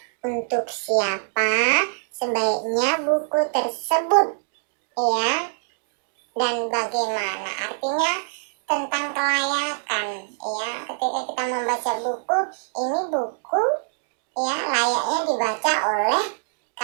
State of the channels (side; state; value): left; silent; digital silence